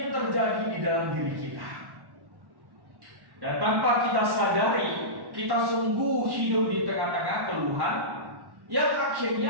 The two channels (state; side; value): late; left; 1.1 ms